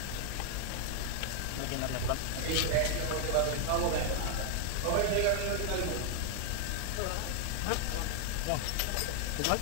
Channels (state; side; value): different; both; correlation 0.00